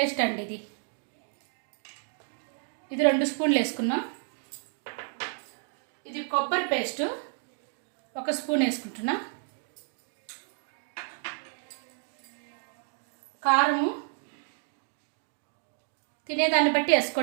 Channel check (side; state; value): left; silent; 57 dB below the other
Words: అండి. ఇది 2 స్పూన్లు వేసుకున్నాం. ఇది కొబ్బరి పేస్ట్ 1 స్పూన్ వేసుకుంటున్నా. కారము తినేదాన్ని బట్టి